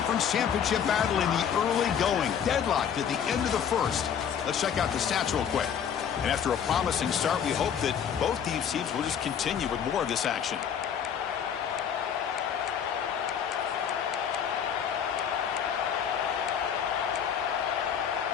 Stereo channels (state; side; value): quieter; right; 8.1 dB